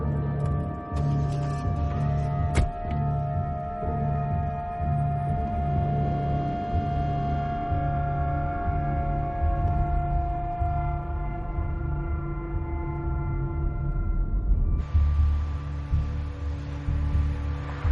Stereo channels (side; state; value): both; identical; correlation 1.00